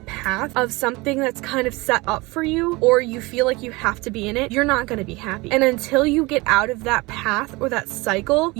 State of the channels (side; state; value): left; quieter; 23.5 dB